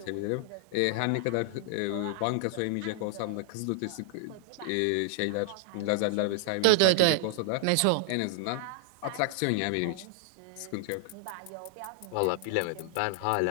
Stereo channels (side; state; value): both; different; correlation 0.00